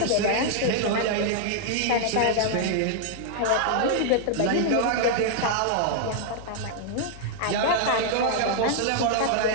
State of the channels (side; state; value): both; different; correlation -0.01